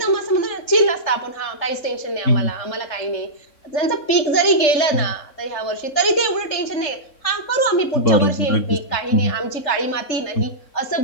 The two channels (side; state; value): right; late; 3.3 ms